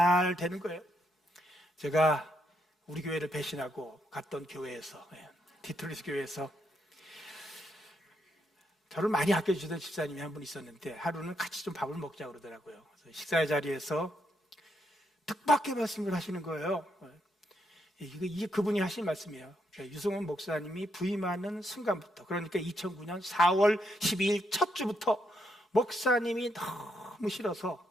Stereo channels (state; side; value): normal; both; correlation 0.78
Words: 되는 거예요. 제가 우리 교회를 배신하고 갔던 교회에서 디트로이트 교회에서 저를 많이 아껴주던 집사님이 한 분 있었는데 하루는 같이 좀 밥을 먹자고 그러더라고요. 그래서 식사의 자리에서 뜻밖의 말씀을 하시는 거예요. 이게 그분이 하신 말씀이에요. 유승원 목사님이 부임하는 순간부터 그러니까 2009년 4월 12일 첫 주부터 목사님이 너무 싫어서